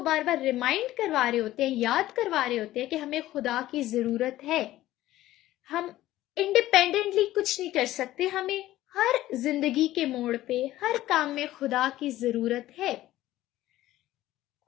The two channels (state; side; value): quieter; right; 15.1 dB